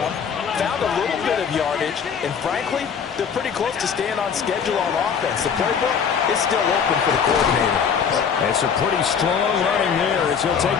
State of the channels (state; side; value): quieter; right; 6.9 dB